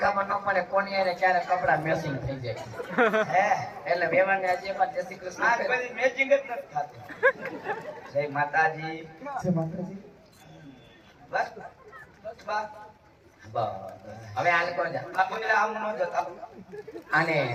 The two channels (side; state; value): both; identical; correlation 1.00